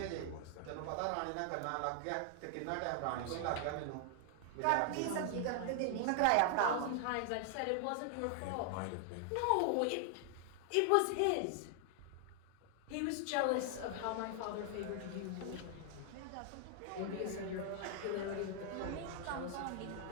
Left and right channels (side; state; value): both; different; correlation 0.00